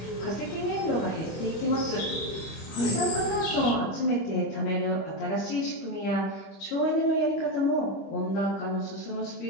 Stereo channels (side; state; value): right; late; 26 ms